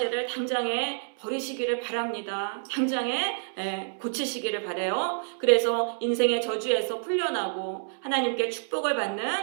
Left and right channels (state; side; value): silent; left; digital silence